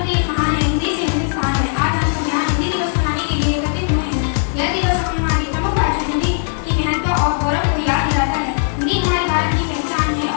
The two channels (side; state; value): right; silent; digital silence